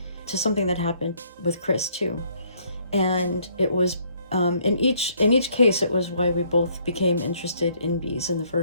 to something that happened with Chris too. And it was in each case, it was why we both became interested in bees in the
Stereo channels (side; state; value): both; inverted; correlation -0.65